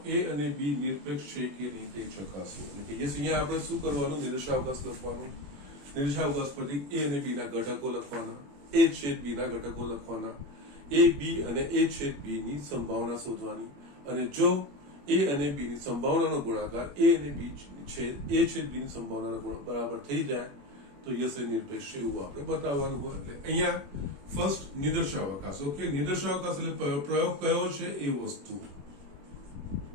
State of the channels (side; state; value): left; late; 21 ms